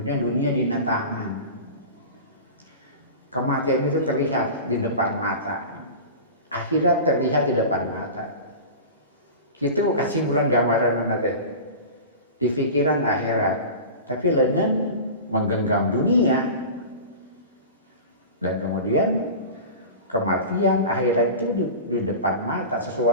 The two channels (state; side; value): inverted; both; correlation -0.32